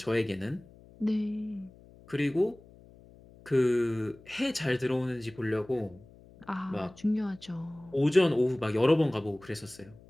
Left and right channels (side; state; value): left; noise; hum, 23 dB below the sound